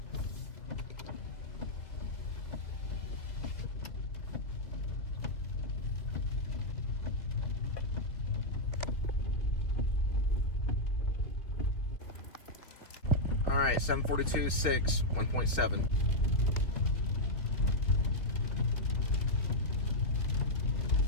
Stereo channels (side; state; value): right; late; 2.7 ms